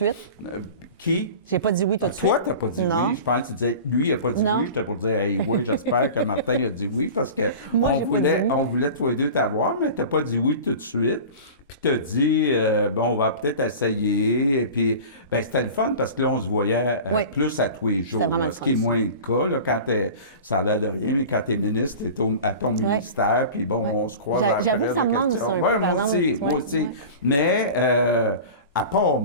Qui? J'ai pas dit oui tout de suite. Toi, t'as pas dit oui. Je pense que tu disais, lui, il a pas dit oui. J'étais pour dire, hey, oui, j'espère que Martin a dit oui, parce que on voulait toi et deux t'avoir, mais t'as pas dit oui tout de suite. Puis t'as dit, bon, on va peut-être essayer. Et puis, ben, c'était le fun parce que là, on se voyait plus à tous les jours. Là, ce qui est moins le cas, là, quand ça a l'air de rien, mais quand t'es ministre, t'es à ton ministère, puis bon, on se croise. J'avoue que ça me manque ça un peu, par exemple. Moi aussi. Mais, à part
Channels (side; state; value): both; inverted; correlation -0.36